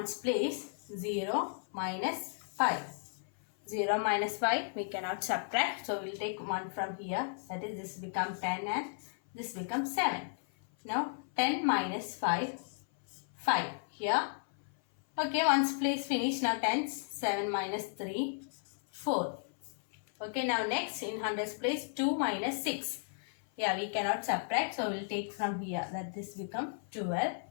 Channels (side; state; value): right; silent; 55 dB below the other